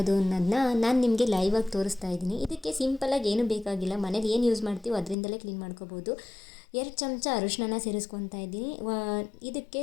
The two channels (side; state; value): right; drops out; at 5.2 s